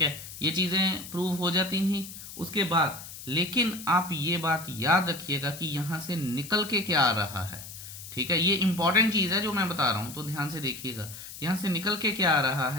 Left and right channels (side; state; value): left; noise; hiss, 13 dB below the sound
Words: है, ये चीजें प्रूव हो जाती थी उसके बाद। लेकिन आप ये बात याद रखिएगा कि यहां से निकल के क्या आ रहा है, ठीक है, ये इंपॉर्टेंट चीज है जो मैं बता रहा हूं, तो ध्यान से देखिएगा। यहां से निकल के क्या आ रहा